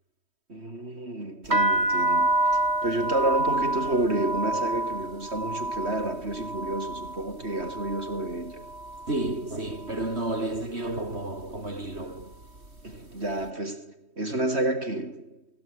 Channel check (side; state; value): left; late; 3.1 ms